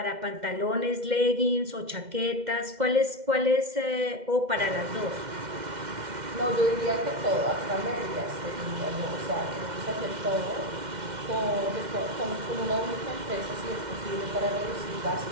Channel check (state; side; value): late; left; 2.1 ms